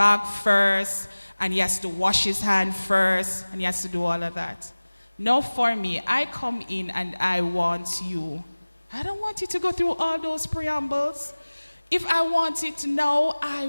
first, and he has to wash his hand first, and he has to do all of that. No, for me, I come in and I want you. I don't want you to go through all those preambles. If I want it now, I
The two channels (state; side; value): inverted; both; correlation -1.00